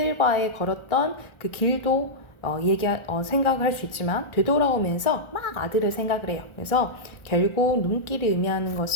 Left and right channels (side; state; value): right; late; 1.4 ms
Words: 걸었던 그 길도 생각을 할 수 있지만 되돌아오면서 막 아들을 생각을 해요. 그래서 결국 눈길이 의미하는